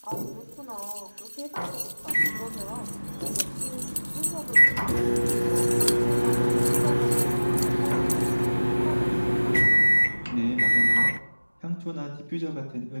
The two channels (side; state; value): both; inverted; correlation -1.00